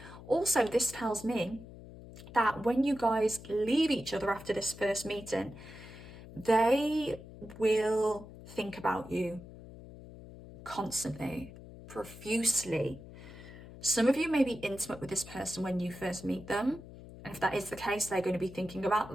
Also, this tells me that when you guys leave each other after this first meeting, they will think about you constantly, profusely. Some of you may be intimate with this person when you first meet them. And if that is the case, they're going to be thinking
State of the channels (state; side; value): noise; left; hum, 16 dB below the sound